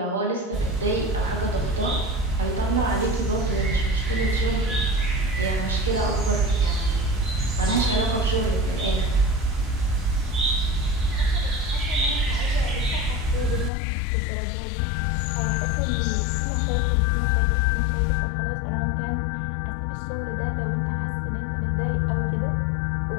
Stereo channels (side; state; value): right; drops out; at 13.7 s